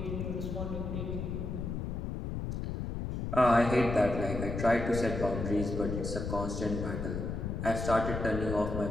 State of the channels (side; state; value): left; noise; rumble, 4 dB below the sound